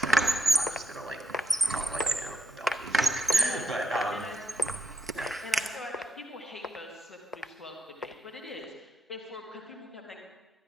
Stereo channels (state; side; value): normal; both; correlation 0.78